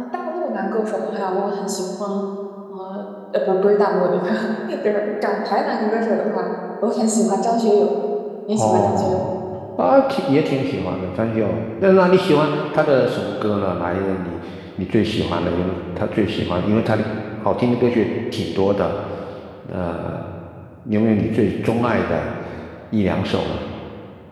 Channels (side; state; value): both; identical; correlation 1.00